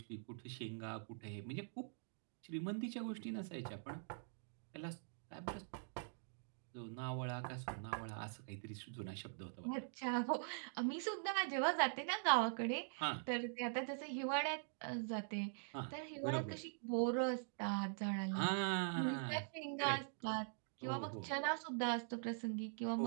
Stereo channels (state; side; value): silent; left; digital silence